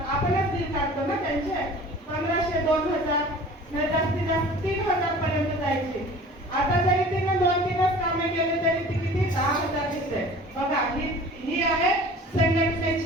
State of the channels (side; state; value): both; normal; correlation 0.44